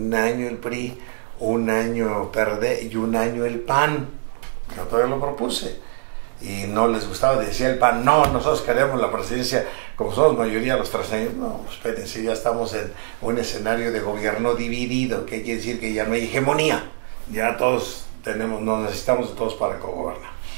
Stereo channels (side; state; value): left; silent; digital silence